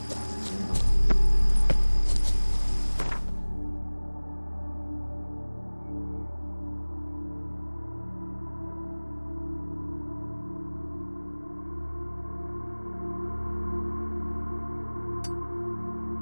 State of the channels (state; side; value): inverted; both; correlation -1.00